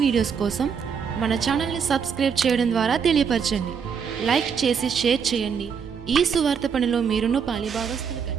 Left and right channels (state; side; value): quieter; left; 6.7 dB